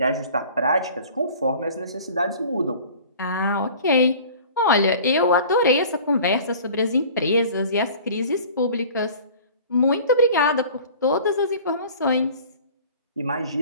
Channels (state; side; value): inverted; both; correlation -0.45